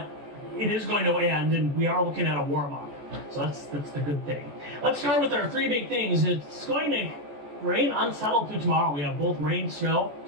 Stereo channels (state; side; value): late; left; 14 ms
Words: it is going to end, and we are looking at a warm-up. So that's the good thing. Let's start with our three big things. It's going to rain unsettled through tomorrow. We have both rain, snow,